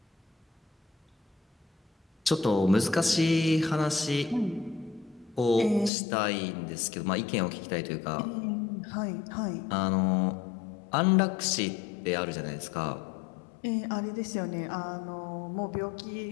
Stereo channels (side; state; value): right; drops out; at 5.9 s